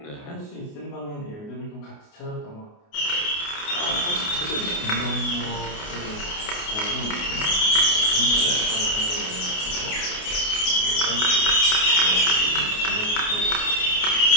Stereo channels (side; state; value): right; late; 28 ms